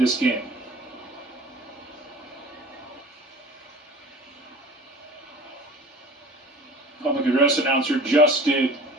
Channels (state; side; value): normal; both; correlation 0.43